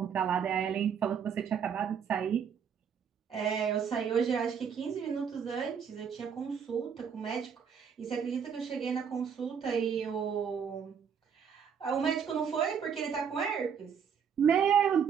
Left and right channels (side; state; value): left; quieter; 7.2 dB